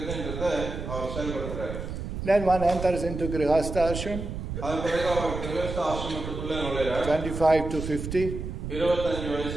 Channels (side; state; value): right; noise; rumble, 6 dB below the sound